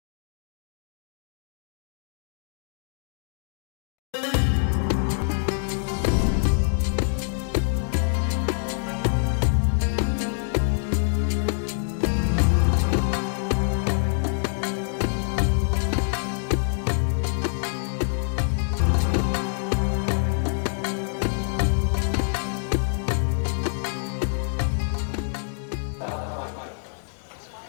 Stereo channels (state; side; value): silent; right; digital silence